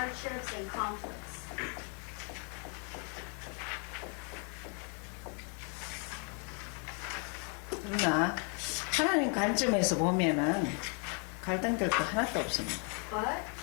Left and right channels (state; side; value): quieter; right; 38.3 dB